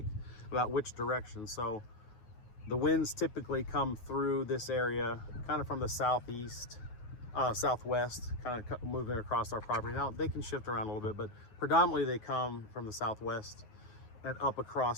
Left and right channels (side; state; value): right; late; 9.5 ms